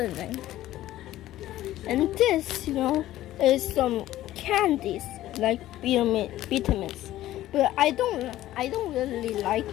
And this, is some candies like vitamins. But I don't really like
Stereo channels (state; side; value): quieter; right; 14.4 dB